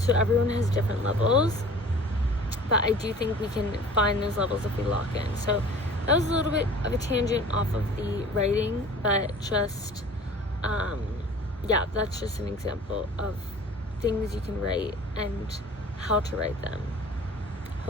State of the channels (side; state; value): both; normal; correlation 0.45